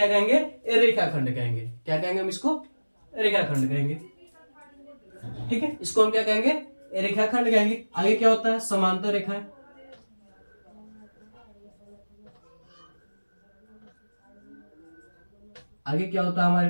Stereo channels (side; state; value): both; inverted; correlation -1.00